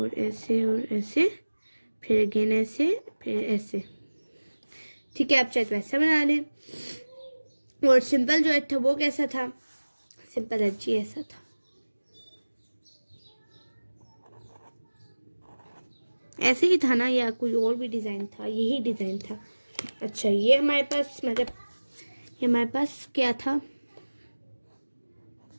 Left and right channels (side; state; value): both; inverted; correlation -1.00